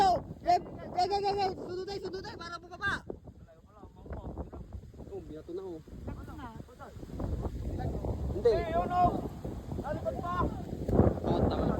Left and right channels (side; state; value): both; identical; correlation 1.00